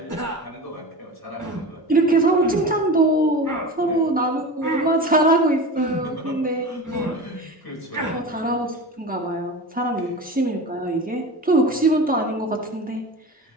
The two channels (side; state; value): both; normal; correlation 0.30